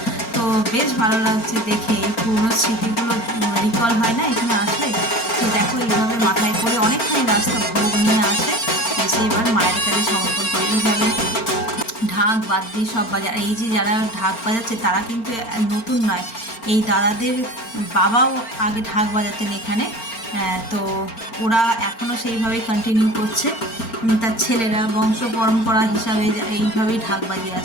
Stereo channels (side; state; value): right; late; 4.4 ms